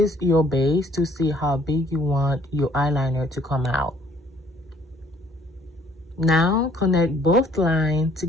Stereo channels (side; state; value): both; normal; correlation 0.60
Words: your base to see how big you want your eyeliner to come out. Now connect both lines